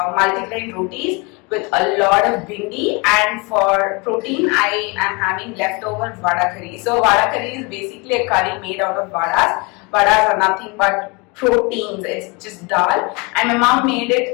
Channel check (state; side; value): quieter; right; 28.3 dB